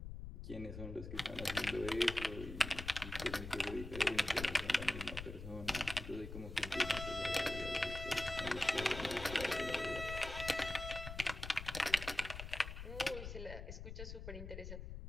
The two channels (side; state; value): left; noise; rumble, 9 dB below the sound